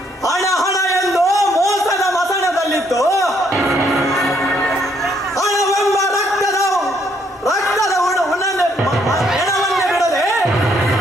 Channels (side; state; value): both; normal; correlation 0.70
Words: ಹಣ ಎಂದು ಮೋಸದ ಮಸಣದಲ್ಲಿತ್ತು ಹಣವೆಂಬ ರಕ್ತದ ಹೆಣವನ್ನೇ ಬಿಡದೆ